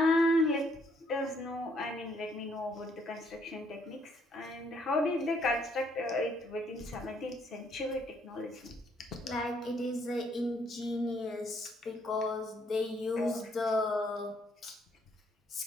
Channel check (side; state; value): both; normal; correlation 0.69